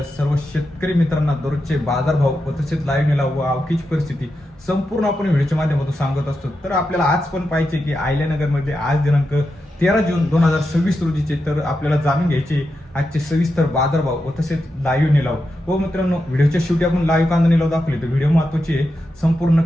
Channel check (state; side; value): normal; both; correlation 0.88